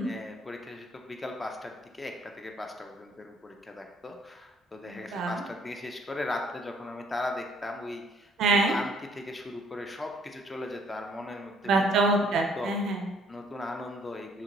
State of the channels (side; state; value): both; normal; correlation 0.62